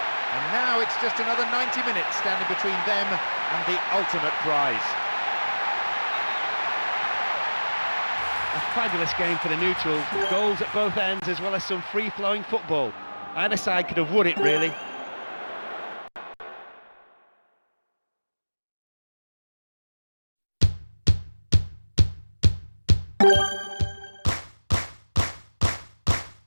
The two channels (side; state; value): both; inverted; correlation -1.00